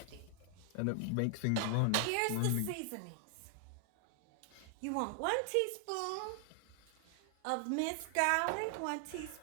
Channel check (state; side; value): different; both; correlation 0.00